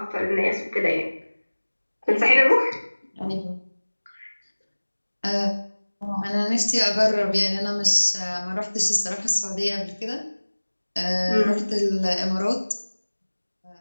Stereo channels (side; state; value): both; inverted; correlation -1.00